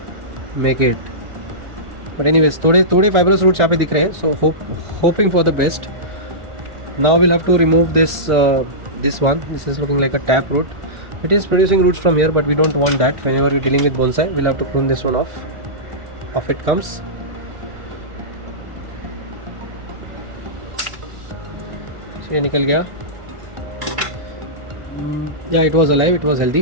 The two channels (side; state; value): left; late; 1.4 ms